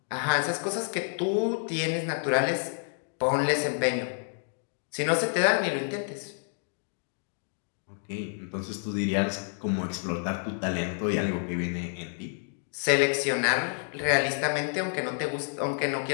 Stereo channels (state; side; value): silent; right; 59 dB below the other